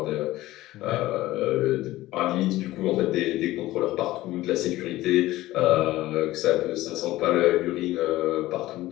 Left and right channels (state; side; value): quieter; right; 16.8 dB